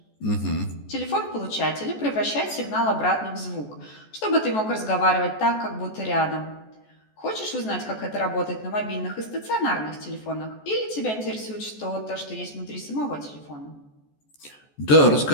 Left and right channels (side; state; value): right; late; 14 ms